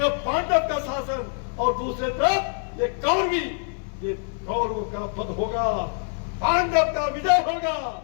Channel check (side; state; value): right; silent; 62 dB below the other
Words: पांडव का शासन और दूसरे तरफ ये कौरवी, ये कौरवों का पद होगा, पांडव का विजय होगा।